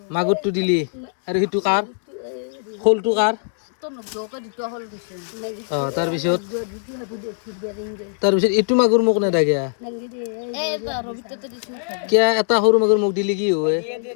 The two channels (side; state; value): right; silent; digital silence